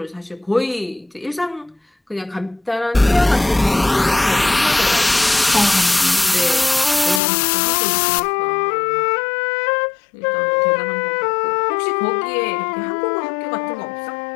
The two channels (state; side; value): drops out; right; at 7.2 s